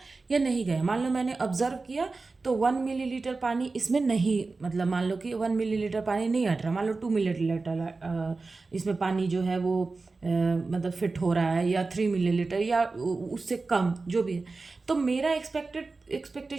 या नहीं गया? मान लो मैंने ऑब्जर्व किया तो 1 मिलीलीटर पानी इसमें नहीं, मतलब मान लो कि 1 मिलीलीटर पानी नहीं हट रहा, मान लो 2 मिलीलीटर इसमें पानी जो है वो मतलब फिट हो रहा है, या 3 मिलीलीटर, या उससे कम जो भी है। तो मेरा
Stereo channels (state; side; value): quieter; left; 3.8 dB